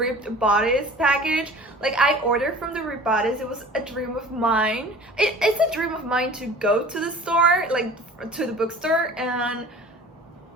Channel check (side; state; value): both; normal; correlation 0.44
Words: Bodice package. Like, I ordered from the Ripped Bodice. It was a dream of mine. It's a dream of mine to go to the store, like to the bookstore,